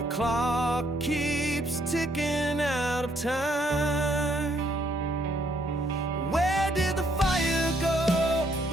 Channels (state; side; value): normal; both; correlation 0.70